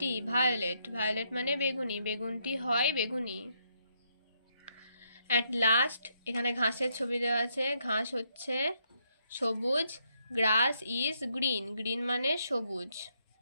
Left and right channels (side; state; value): both; inverted; correlation -0.76